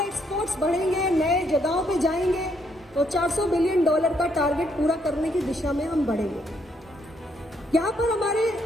एक्सपोर्ट्स बढ़ेंगे, नए जगहों पे जाएंगे, तो $400 बिलियन का टारगेट पूरा करने की दिशा में हम बढ़ेंगे। यहां पर हमारे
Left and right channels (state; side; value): normal; both; correlation 0.72